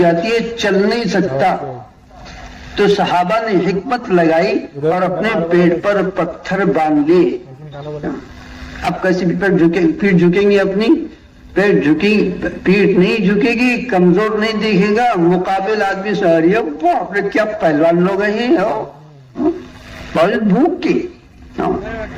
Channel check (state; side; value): identical; both; correlation 1.00